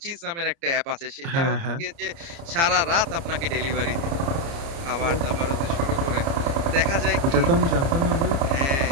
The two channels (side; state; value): left; late; 30 ms